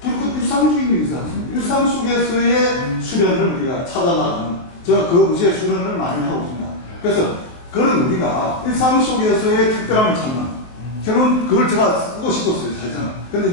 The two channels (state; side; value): late; right; 23 ms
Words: 불그 일상주의는 있지 않습니까? 일상 속에서의 수련을 우리가 찾아나가는 제가 그 의지의 수련을 많이 하고 있습니다. 그래서 그런 우리가 일상 속에서의 특별함을 찾는 결론 그걸 제가 쓰고 싶었어요, 사실은. 근데